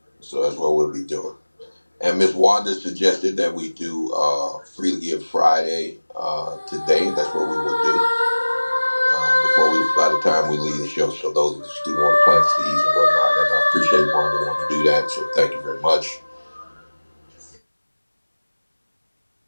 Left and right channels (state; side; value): inverted; both; correlation -1.00